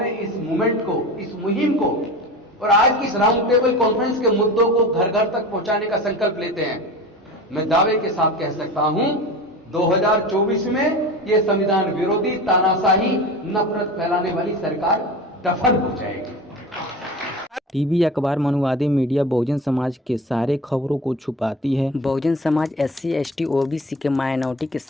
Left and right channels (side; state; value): both; normal; correlation 0.33